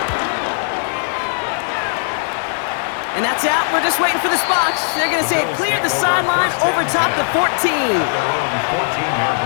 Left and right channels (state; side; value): silent; right; digital silence